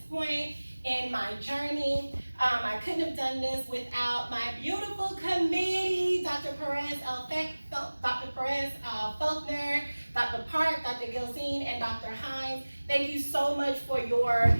point in my journey. I couldn't have done this without my beautiful committee, Dr. Dr. Perez Faulkner, Dr. Park, Dr. Gilzine, and Dr. Hines. Thank you so much for your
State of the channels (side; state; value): both; inverted; correlation -1.00